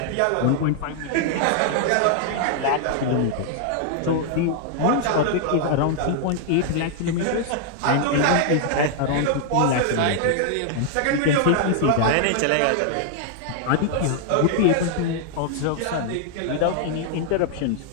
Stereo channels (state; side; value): different; both; correlation 0.00